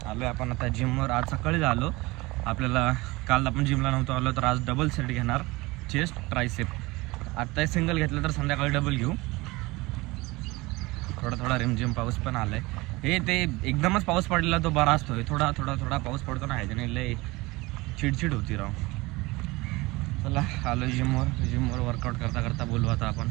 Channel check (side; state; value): left; quieter; 22.1 dB